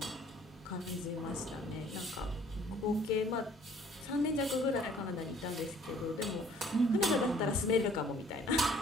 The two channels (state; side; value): normal; both; correlation 0.57